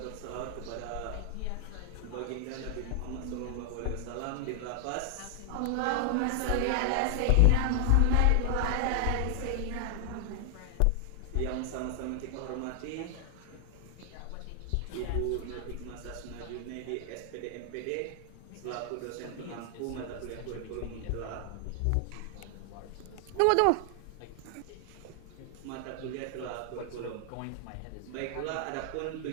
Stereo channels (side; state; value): both; different; correlation 0.00